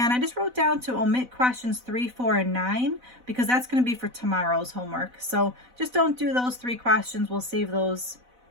I just wrote down to omit questions 3, 4, and 9 because that's going to be for tomorrow's homework. So just don't do those 3 questions. We'll save those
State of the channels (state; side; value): late; left; 4.0 ms